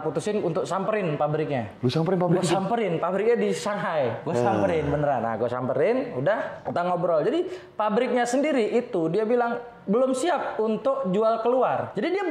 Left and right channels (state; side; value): identical; both; correlation 1.00